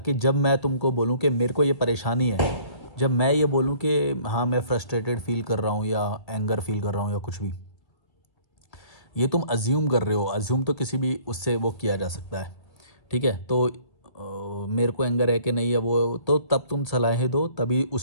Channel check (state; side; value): late; right; 1.6 ms